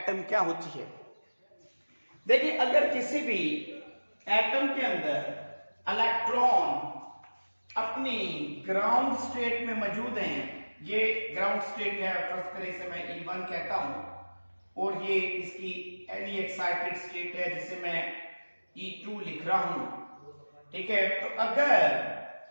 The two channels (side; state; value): both; inverted; correlation -1.00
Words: क्या होती है। देखिए, अगर किसी भी एटम के अंदर इलेक्ट्रॉन अपनी ग्राउंड स्टेट में मौजूद हैं, ये ग्राउंड स्टेट है, फर्स्ट करें इसे मैं E1 कहता हूं, और ये इसकी एनी एक्साइटेड स्टेट है जिसे मैं E2 लिख रहा हूं। ठीक है, तो अगर